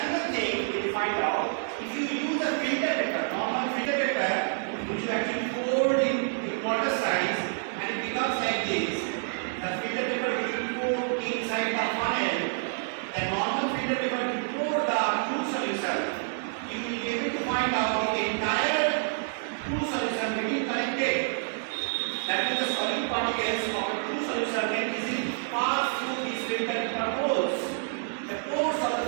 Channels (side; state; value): left; silent; 59 dB below the other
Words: thing we will find out, if you use a filter paper, normal filter paper, which you actually fold in quarter size and it becomes like this. The filter paper which you pour inside the funnel, the normal filter paper you pour the true solution, you will be able to find out the entire true solution getting collected. That means the solute particles of a true solution can easily pass through these filter paper holes. The pores of the